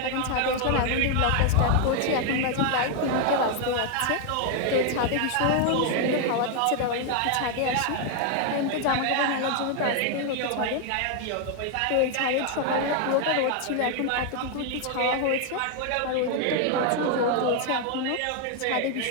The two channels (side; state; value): both; different; correlation 0.01